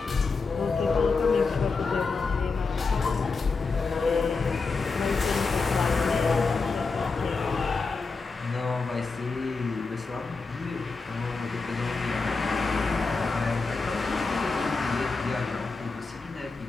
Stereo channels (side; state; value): right; quieter; 4.3 dB